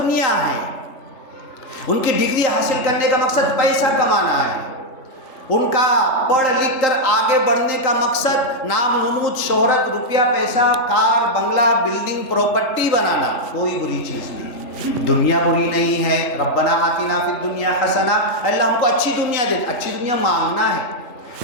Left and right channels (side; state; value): right; late; 3.8 ms